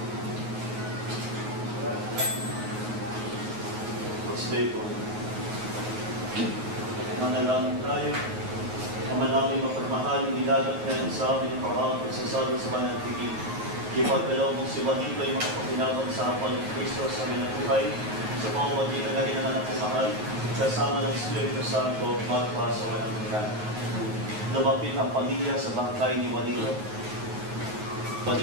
Manalangin tayo. Ama namin mapagmahal, inilagat kayo sa amin ang parang pagsasabi sa banal na tigil. Ipagkalaw mong si Juanito ay makapaginaban sa hapon ng Kristo sa aming buhay, sa pamamagitan na rin ng anak ng mahal, kasama ng Espiritu Santo, magpa sa walang hanggan. Lumapit ang pamilya sa bangkay ni Juanito.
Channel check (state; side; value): late; left; 9.6 ms